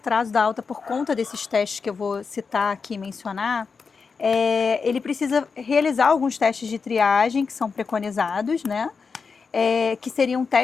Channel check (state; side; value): quieter; right; 5.2 dB